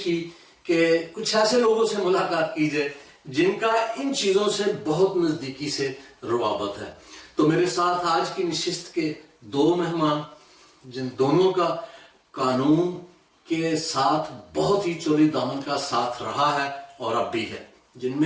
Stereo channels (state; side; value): identical; both; correlation 1.00